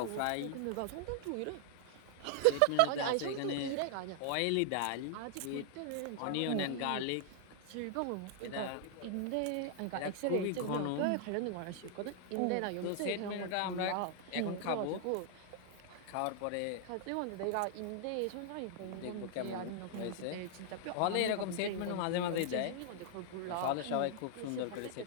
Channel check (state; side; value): different; both; correlation -0.01